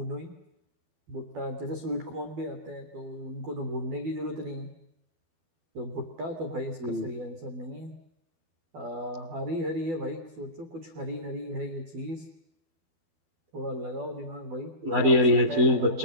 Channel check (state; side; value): late; left; 12 ms